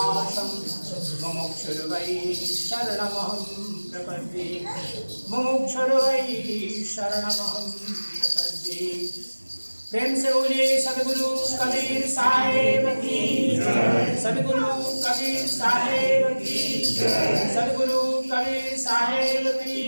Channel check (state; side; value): inverted; both; correlation -1.00